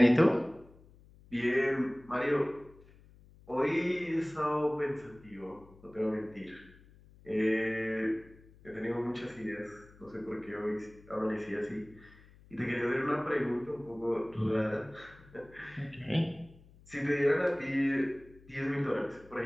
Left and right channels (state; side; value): noise; left; hum, 24 dB below the sound